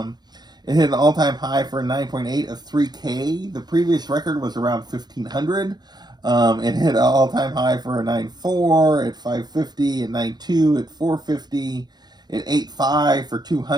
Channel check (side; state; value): left; late; 0.20 ms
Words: It hit an all-time high for a 9.8 of 3K. The previous record was around 1,500. It hit an all-time high for a 9.4 at 550, a 9.2 at 450, at 8.5 for